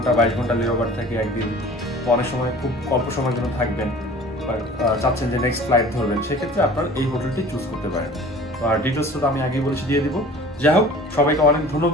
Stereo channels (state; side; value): normal; both; correlation 0.45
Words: 22 ঘন্টা লেওভার থাকে একদিন, তো অনেক সময় খুব অল্প সময়ের জন্য থাকবেন, চাচ্ছেন যে নেক্সট ফ্লাইট ধরবেন, সেক্ষেত্রে আপনার এই হোটেলটি চুজ করতে পারেন। আর ডিটেলসটা তো আমি আগেই বলেছি, দিয়ে দিব। যাই হোক, সবাইকে অনেক